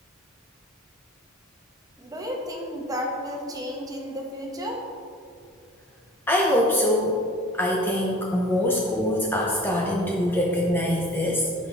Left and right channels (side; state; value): both; normal; correlation 0.45